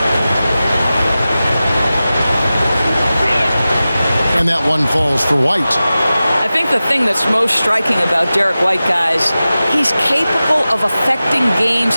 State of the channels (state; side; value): inverted; both; correlation -0.95